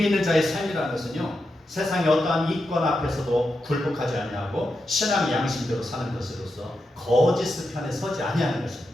있는 자의 삶이라는 것은요, 세상의 어떠한 이권 앞에서도 굴복하지 아니하고 신앙의 양심대로 사는 것으로서 거짓 편에 서지 아니하는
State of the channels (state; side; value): normal; both; correlation 0.87